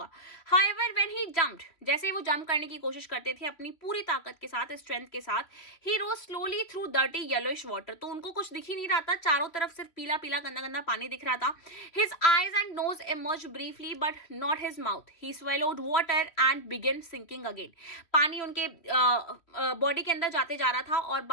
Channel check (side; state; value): right; late; 3.0 ms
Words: हाउएवर व्हेन ही जंप्ड, जैसे ही वो जंप करने की कोशिश करते थे अपनी पूरी ताकत के साथ, स्ट्रेंथ के साथ, he rose slowly through dirty yellowish water, तो उनको कुछ दिख ही नहीं रहा था, चारों तरफ सिर्फ पीला पीला गंदा गंदा पानी दिख रहा था। His eyes and nose emerge briefly but not his mouth, he swallowed water and began sinking again, पानी उनके बॉडी के अंदर जाते जा रहा था और